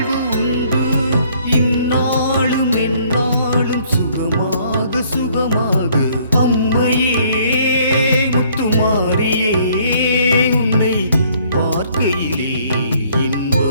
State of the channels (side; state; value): both; inverted; correlation -0.62